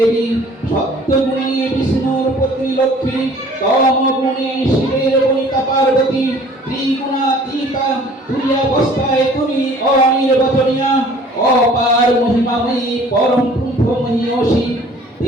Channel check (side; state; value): both; normal; correlation 0.52